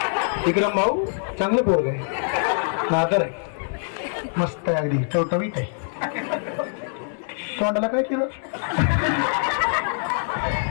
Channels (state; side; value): silent; right; 63 dB below the other